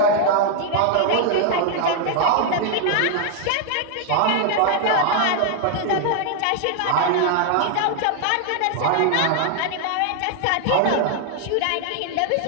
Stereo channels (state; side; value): different; both; correlation 0.00